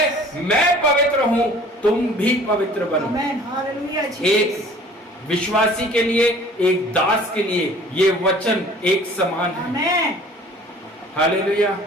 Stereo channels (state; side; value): normal; both; correlation 0.50